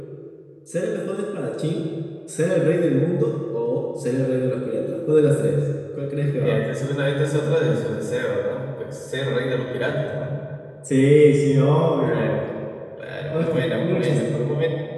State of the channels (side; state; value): both; identical; correlation 1.00